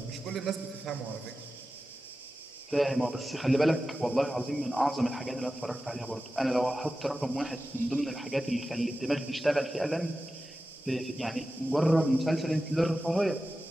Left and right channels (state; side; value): normal; both; correlation 0.93